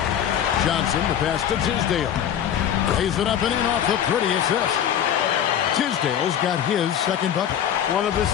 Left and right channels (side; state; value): right; quieter; 9.6 dB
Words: Johnson, the pass to Tisdale. Lays it up and in off the pretty assist. Tisdale's got his 2nd bucket. One of his